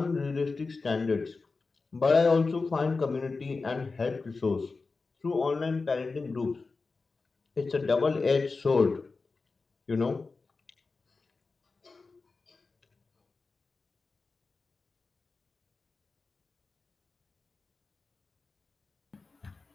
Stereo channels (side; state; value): right; quieter; 4.1 dB